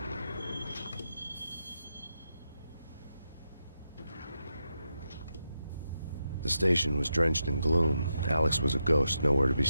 The station was drenched in gloom. Alex was a ghost, nowhere to be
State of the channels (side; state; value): both; inverted; correlation -0.86